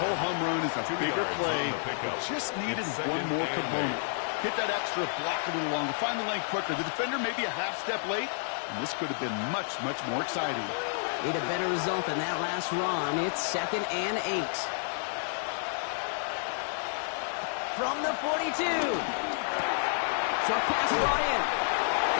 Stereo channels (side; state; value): right; silent; digital silence